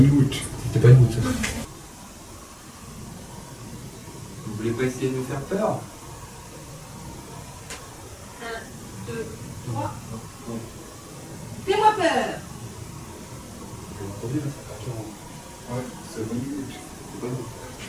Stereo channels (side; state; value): both; identical; correlation 1.00